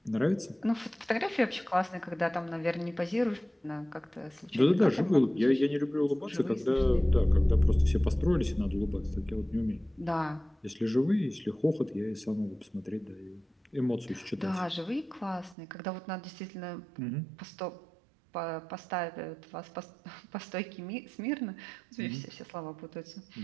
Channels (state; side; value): drops out; left; at 15.6 s